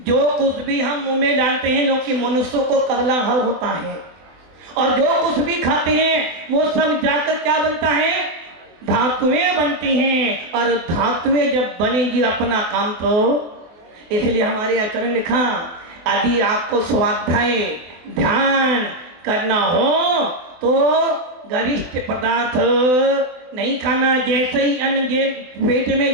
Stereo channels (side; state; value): left; late; 24 ms